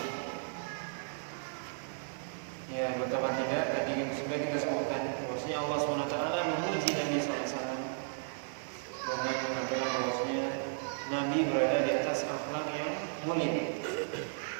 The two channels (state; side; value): silent; left; 55 dB below the other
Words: Ya, betapa tidak tadi sudah kita sebutkan bahwasanya Allah SWT memuji Nabi SAW dengan mengatakan bahwasanya Nabi berada di atas akhlak yang mulia.